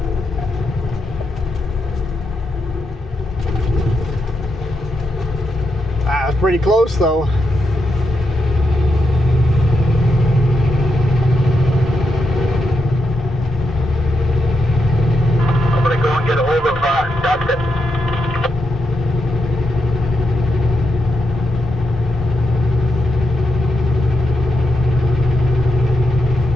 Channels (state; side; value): normal; both; correlation 0.84